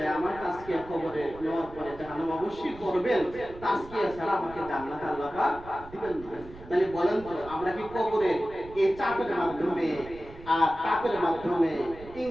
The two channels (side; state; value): right; noise; rumble, 18 dB below the sound